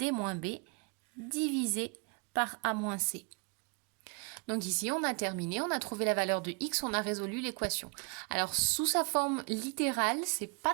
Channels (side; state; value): left; quieter; 35.2 dB